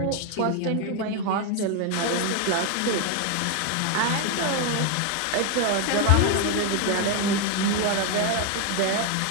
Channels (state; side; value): different; both; correlation 0.01